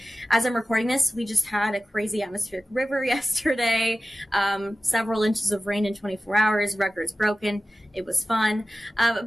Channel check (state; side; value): normal; both; correlation 0.94